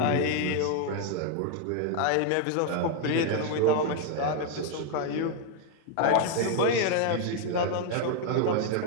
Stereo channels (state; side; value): different; both; correlation 0.00